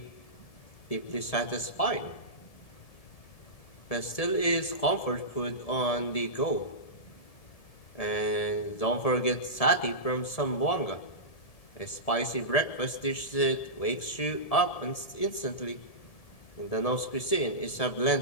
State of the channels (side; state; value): right; late; 1.7 ms